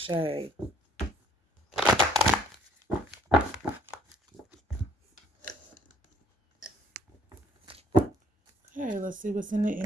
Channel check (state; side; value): normal; both; correlation 0.61